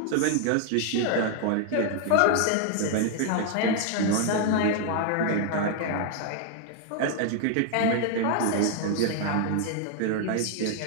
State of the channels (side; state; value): both; different; correlation 0.00